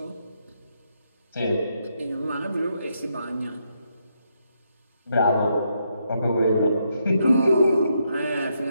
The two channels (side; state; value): both; inverted; correlation -0.79